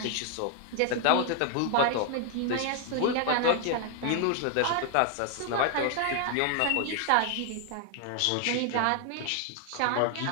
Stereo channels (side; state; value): both; different; correlation 0.00